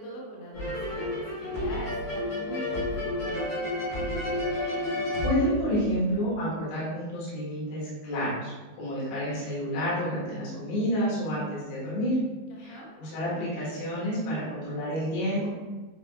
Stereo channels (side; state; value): right; late; 19 ms